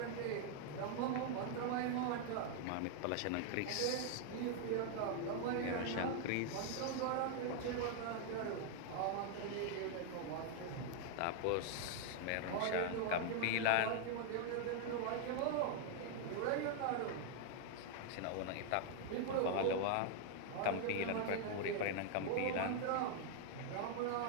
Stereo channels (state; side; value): different; both; correlation 0.00